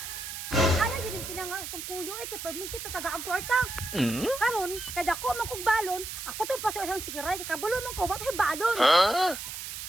Ala yun yung pinangalas tong kuyo ay kay perminti tataga ang kwarta. Karon, kada ko man kog balon, ako tong pasoy si kiray kay kabulo man ko bato balon.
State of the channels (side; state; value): right; noise; hiss, 8 dB below the sound